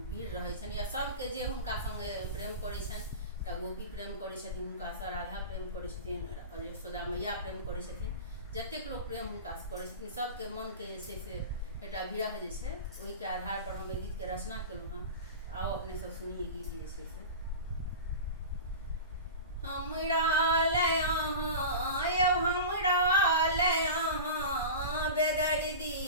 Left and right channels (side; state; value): both; inverted; correlation -0.30